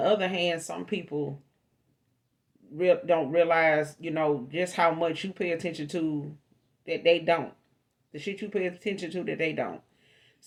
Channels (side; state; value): both; identical; correlation 1.00